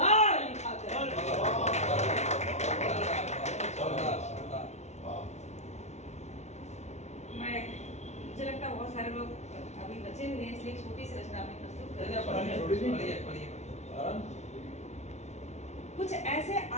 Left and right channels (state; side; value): late; right; 0.32 ms